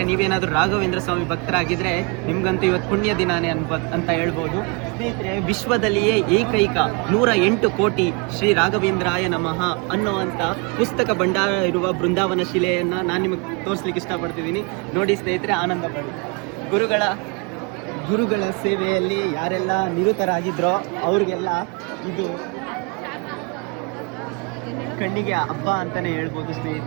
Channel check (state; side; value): quieter; left; 31.8 dB